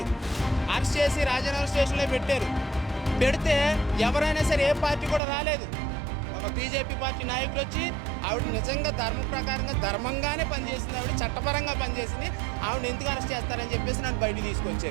అరెస్ట్ చేసి రాజనగర్ స్టేషన్లో పెట్టారు. పెడితే ఎవరైనా సరే ఏ పార్టీ కూడా రాలేదు. ఒక బీజేపీ పార్టీ నాయకులు వచ్చి ఆవిడ నిజంగా ధర్మ ప్రకారంగా ధర్మంగానే పనిచేసింది, ఆవిడ చట్టపరంగా పనిచేసింది, ఆవిడ ఎందుకు అరెస్ట్ చేస్తారని చెప్పేసి నన్ను బయటకు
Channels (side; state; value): left; drops out; at 5.2 s